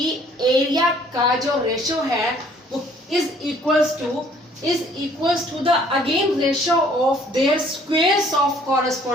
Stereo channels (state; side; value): normal; both; correlation 0.59